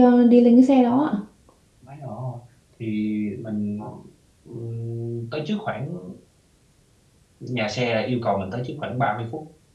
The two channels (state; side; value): identical; both; correlation 1.00